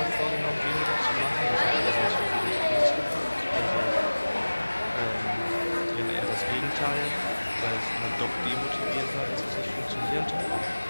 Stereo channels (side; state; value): both; inverted; correlation -1.00